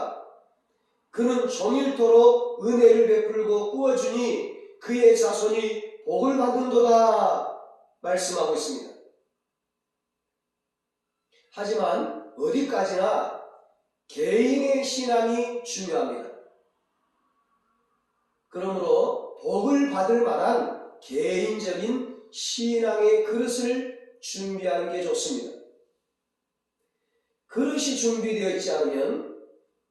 그는 종일토록 은혜를 베풀고 꾸어주니 그의 자손이 복을 받는도다 말씀하고 있습니다. 하지만 어디까지나 개인의 신앙이 중요합니다. 그러므로 복을 받을 만한 개인적인 신앙의 그릇을 준비하는 게 좋습니다. 그릇이 준비되어 있지 않으면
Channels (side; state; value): both; identical; correlation 1.00